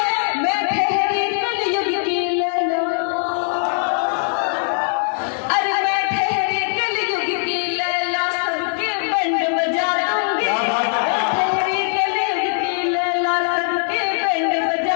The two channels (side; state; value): right; silent; 64 dB below the other